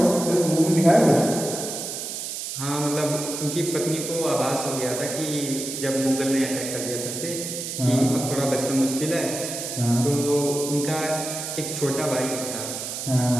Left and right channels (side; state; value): right; noise; hiss, 6 dB below the sound